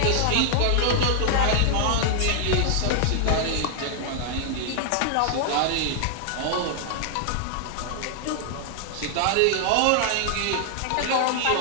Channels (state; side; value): different; both; correlation 0.00